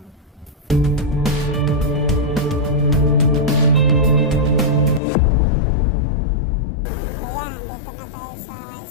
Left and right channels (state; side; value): drops out; right; at 5.0 s